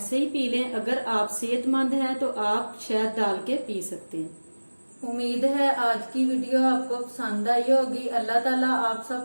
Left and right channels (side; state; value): both; inverted; correlation -1.00